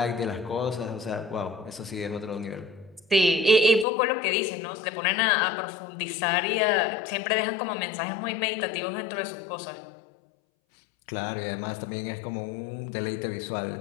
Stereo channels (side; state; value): right; drops out; at 3.9 s